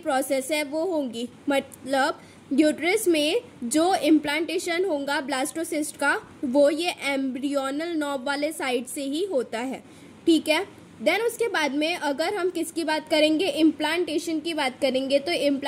है वो होंगी, मतलब यूट्रस में जो इम्प्लांटेशन होगा ब्लास्टोसिस्ट का वो ये एम्ब्रियोनल नॉब वाले साइड से ही होता है। ठीक है। देन उसके बाद में अगर हम किसकी बात करेंगे, इम्प्लांटेशन की बात करेंगे, तो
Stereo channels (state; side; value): identical; both; correlation 1.00